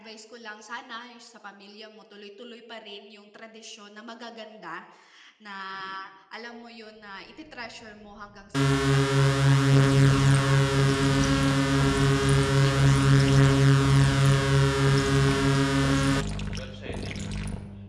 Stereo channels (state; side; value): identical; both; correlation 1.00